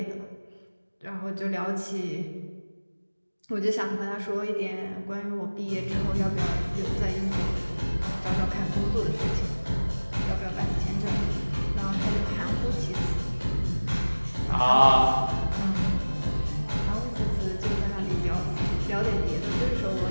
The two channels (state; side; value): inverted; both; correlation -1.00